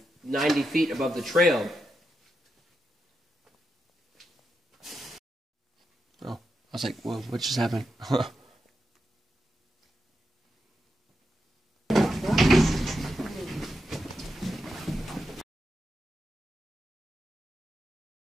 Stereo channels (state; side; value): normal; both; correlation 0.86